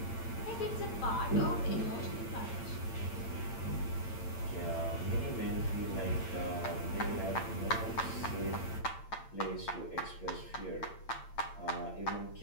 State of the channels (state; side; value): late; right; 8.8 ms